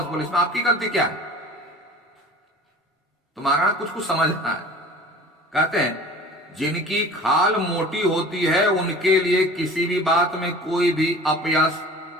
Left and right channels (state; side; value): normal; both; correlation 0.42